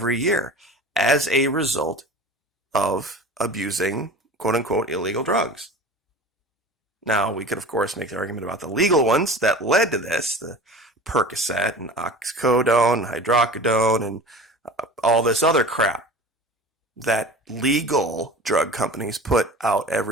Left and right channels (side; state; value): both; normal; correlation 0.37